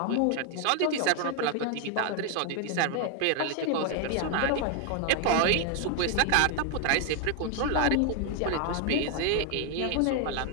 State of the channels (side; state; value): both; different; correlation 0.01